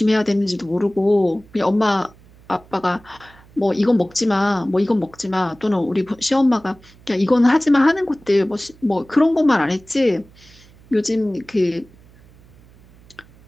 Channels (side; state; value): right; noise; hum, 26 dB below the sound